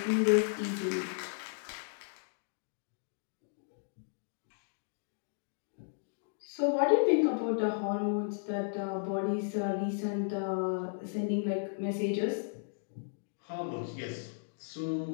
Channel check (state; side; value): silent; right; digital silence